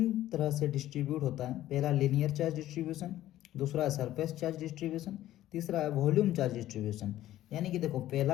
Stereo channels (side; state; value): right; quieter; 13.8 dB